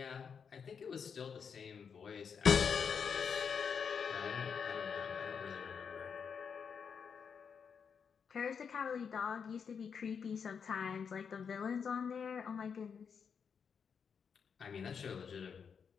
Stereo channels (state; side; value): quieter; right; 6.5 dB